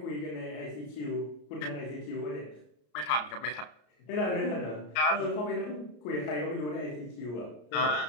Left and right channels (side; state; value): right; late; 33 ms